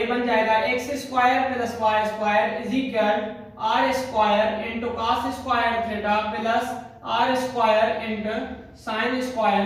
बन जाएगा x square plus y square is equal r square into cos square theta plus r square into sin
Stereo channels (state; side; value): identical; both; correlation 1.00